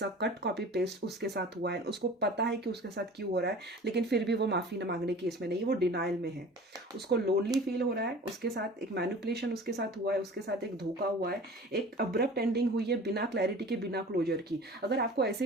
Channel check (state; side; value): normal; both; correlation 0.41